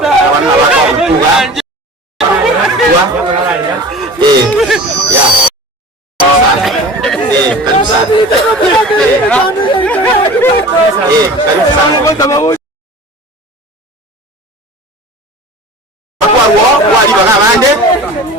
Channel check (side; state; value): both; normal; correlation 0.39